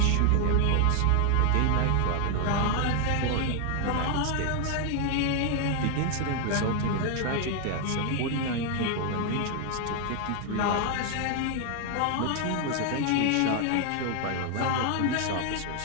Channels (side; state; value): both; different; correlation 0.00